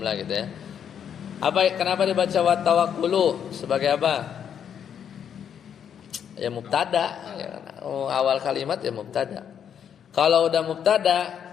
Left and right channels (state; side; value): quieter; right; 8.4 dB